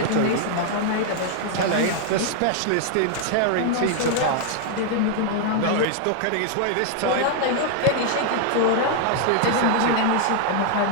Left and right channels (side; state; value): both; different; correlation 0.00